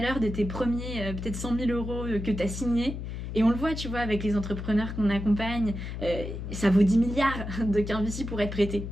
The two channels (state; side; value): noise; left; hum, 7 dB below the sound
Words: de tes premiers, peut-être 100 000 euros que tu as signés, et on le voit, tu vois, avec les entrepreneurs qu'on accompagne, ça vaut 10 milliards de qu'un pour être prêté.